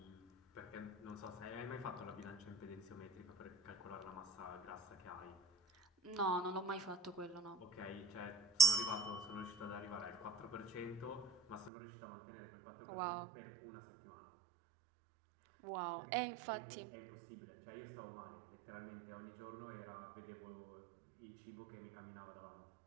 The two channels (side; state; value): left; drops out; at 11.7 s